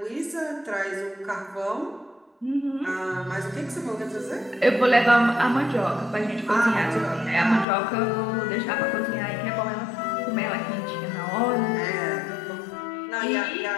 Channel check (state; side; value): drops out; right; at 7.7 s